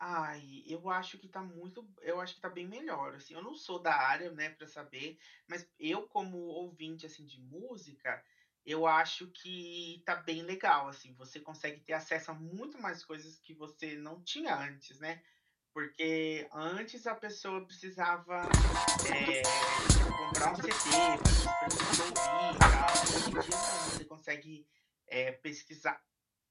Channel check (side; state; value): both; identical; correlation 1.00